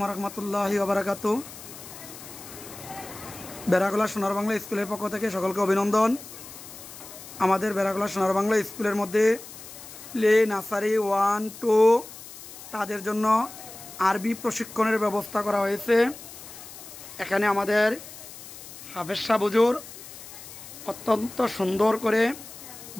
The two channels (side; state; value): left; noise; hiss, 15 dB below the sound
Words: রহমতুল্লাহি ওবারাকাতু। বেড়াগোলা সোনার বাংলা স্কুলের পক্ষ থেকে সকলকে অভিনন্দন। আমাদের বেড়াগোলা সোনার বাংলা স্কুলের মধ্যে প্লে নার্সারি 1, 2 তাদের জন্য আরবি প্রশিক্ষণের ব্যবস্থা করা হয়েছে। এখানে আমাদের হাফেজ সাহেব হুজুর অত্যন্ত সুন্দর করে